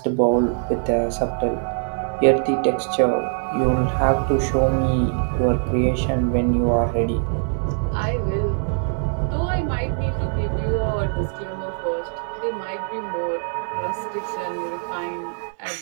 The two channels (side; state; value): left; silent; 64 dB below the other